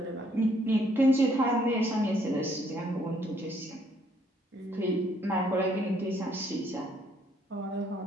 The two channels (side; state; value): both; normal; correlation 0.67